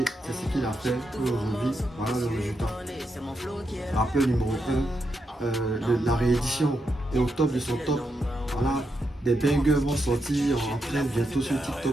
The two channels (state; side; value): normal; both; correlation 0.83